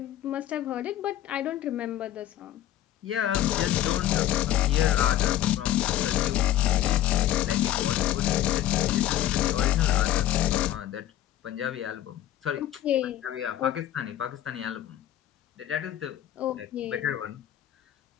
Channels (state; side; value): quieter; right; 12.6 dB